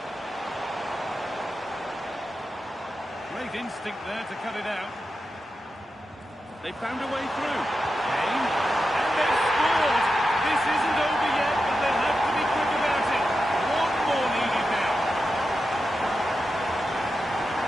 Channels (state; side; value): normal; both; correlation 0.90